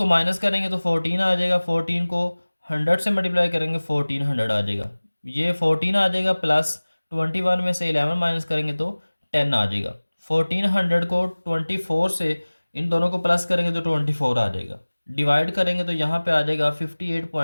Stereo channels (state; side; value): inverted; both; correlation -1.00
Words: माइनस करेंगे तो 14 आ जाएगा। 14 को 100 से मल्टीप्लाई करेंगे 1400 आ जाएगा। ये 14 आ जाएगा प्लस 21 में से 11 माइनस करेंगे तो 10 आ जाएगा। 1400 को 24 से इन दोनों को प्लस करेंगे तो 24 आ जाएगा। डिवाइड करेंगे तो यहाँ पे आ जाएगा